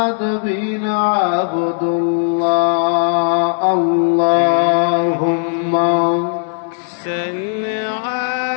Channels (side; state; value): right; silent; digital silence